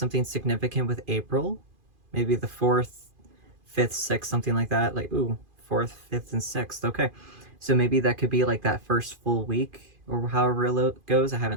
significant with April. Maybe the 4th, 5th, 6th, something like that. Like, ooh, 4th, 5th, and 6th. Okay. So maybe that could be like that first full week or however it goes. I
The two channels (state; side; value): late; left; 2.5 ms